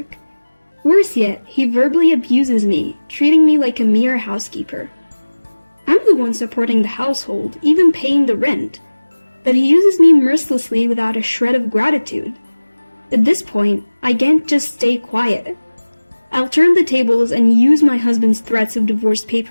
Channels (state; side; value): inverted; both; correlation -1.00